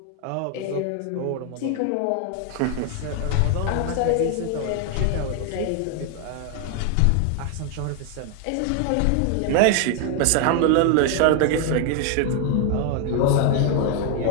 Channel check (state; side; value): different; both; correlation 0.00